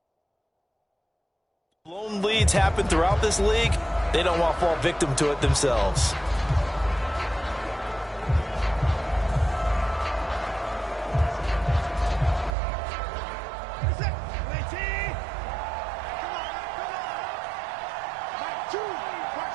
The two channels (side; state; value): left; drops out; at 12.6 s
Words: Blown leads happen throughout this league. They don't want to fall victim to it themselves.